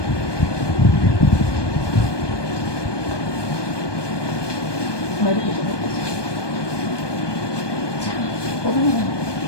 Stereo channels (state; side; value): late; right; 1.2 ms